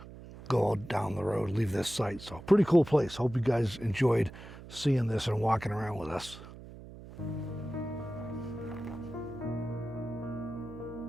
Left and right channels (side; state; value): right; noise; hum, 15 dB below the sound